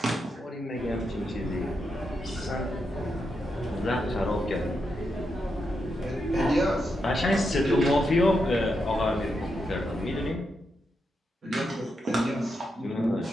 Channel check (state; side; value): normal; both; correlation 0.84